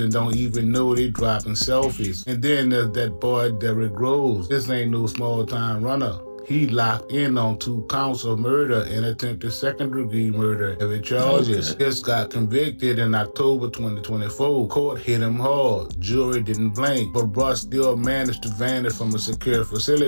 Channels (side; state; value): both; inverted; correlation -1.00